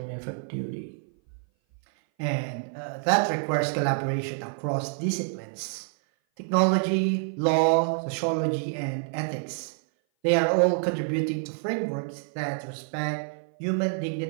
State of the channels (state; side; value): silent; left; 57 dB below the other